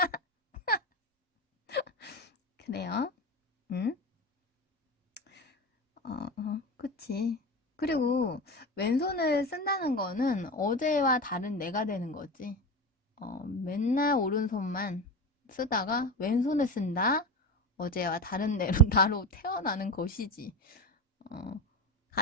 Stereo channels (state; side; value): normal; both; correlation 0.24